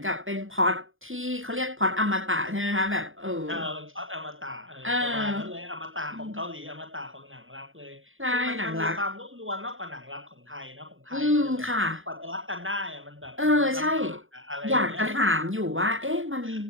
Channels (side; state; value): left; late; 0.59 ms